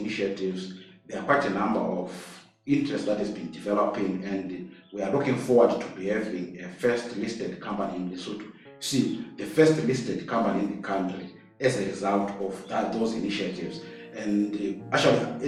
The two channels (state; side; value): identical; both; correlation 1.00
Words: there are quite a number of interest that has been developing, and we are looking forward to be having a first listed company in Lesotho. See, the first listed company in the country as a result of those initiatives. And actually,